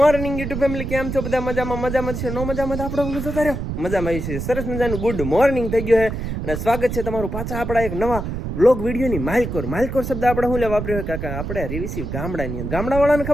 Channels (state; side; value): noise; right; rumble, 5 dB below the sound